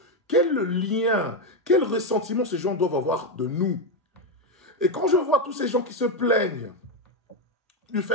quel lien, quel ressentiment ces gens doivent avoir de nous. Et quand je vois tous ces gens qui se plaignent du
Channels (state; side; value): normal; both; correlation 0.07